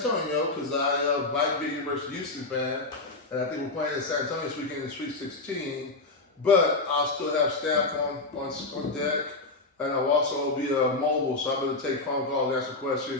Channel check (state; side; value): quieter; right; 3.4 dB